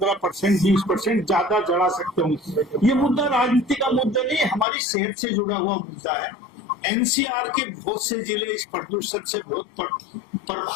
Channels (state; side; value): drops out; right; at 4.7 s